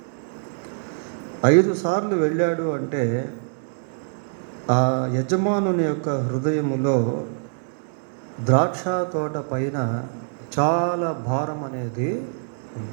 5 సార్లు వెళ్ళాడు అంటే ఆ యజమానుని యొక్క హృదయములో ద్రాక్ష తోట పైన చాలా భారం అనేది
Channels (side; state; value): left; silent; 59 dB below the other